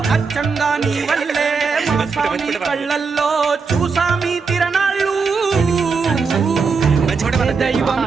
అచ్చంగా నీ వల్లే మా స్వామి కళ్ళల్లో చూసామి తిరణాళ్ళు. దైవం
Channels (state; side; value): quieter; left; 5.0 dB